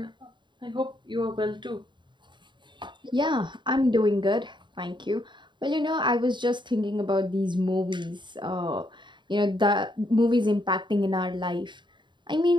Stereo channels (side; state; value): left; late; 0.23 ms